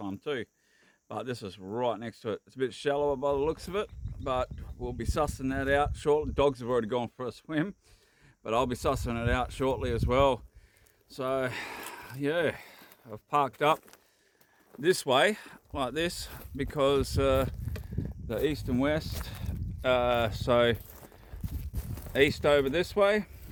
too, but this is right next to it. It's a bit shallower by the looks of it, but we'll be sussing that out shortly. Dogs have already gone for a swim, but I'll be sussing it out shortly as well. So yeah, I've parked up this way like this because the east and west, so east over this way,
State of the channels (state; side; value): identical; both; correlation 1.00